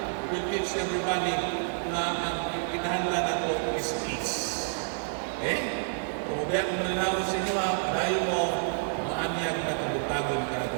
will teach everybody na ang kinahanglan nato is peace. Okay? Kung biyak mo na sa inyo, dahil mo, maanyag na kabutagon ka na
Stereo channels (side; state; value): left; silent; 55 dB below the other